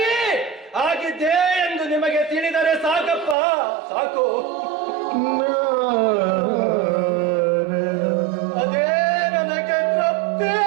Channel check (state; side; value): drops out; left; at 3.4 s